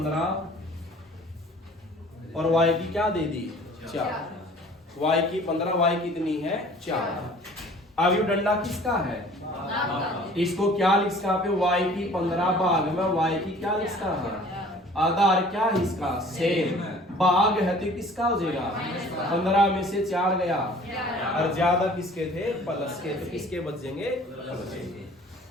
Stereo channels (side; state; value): both; normal; correlation 0.50